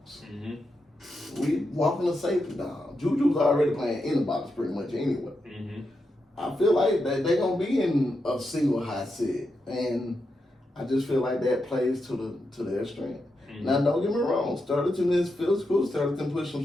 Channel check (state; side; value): normal; both; correlation 0.86